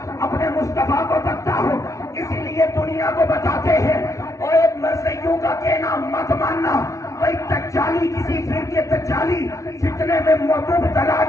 اپنے مصطفیٰ کو تکتا ہوں، اسی لیے دنیا کو بتاتے ہیں اور ایک مرثیوں کا کہنا مت ماننا، کوئی تجالی کسی فرقے تجالی فتنے میں مبتلا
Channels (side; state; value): right; late; 0.15 ms